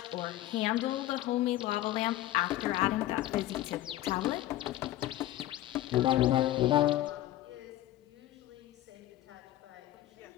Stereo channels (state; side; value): quieter; right; 14.6 dB